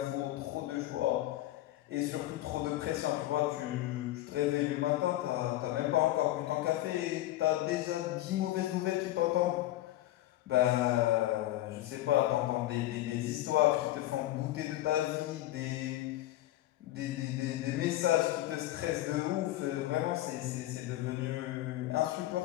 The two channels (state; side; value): quieter; right; 15.3 dB